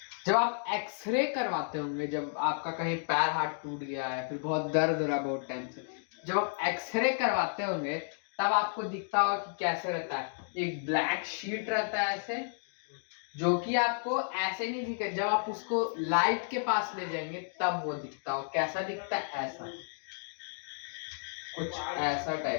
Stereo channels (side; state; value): right; silent; digital silence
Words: जब आप एक्सरे करवाते होंगे, जब आपका कहीं पैर हाथ टूट गया है, फिर बहुत दर्द हो रहा है बहुत टाइम से, जब आप एक्सरे करवाते होंगे तब आपको दिखता होगा कि कैसे रहता है, एक ब्लैक शीट रहता है ऐसे, जो कि आपको ऐसे नहीं दिखेगा, जब आप उसको लाइट के पास ले जाएंगे तब वो दिखता हो। कैसा दिखता है? ऐसा, कुछ ऐसा